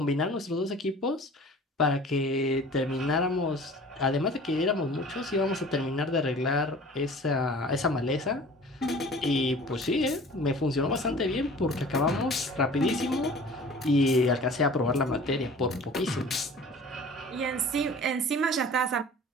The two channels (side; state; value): both; normal; correlation 0.44